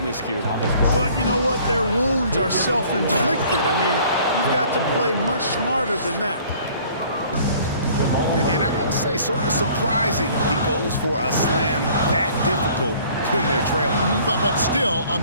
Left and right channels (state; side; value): inverted; both; correlation -0.54